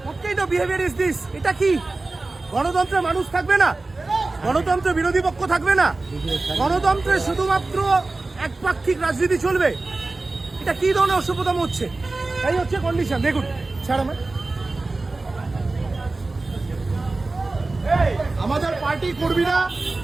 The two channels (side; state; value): left; quieter; 3.3 dB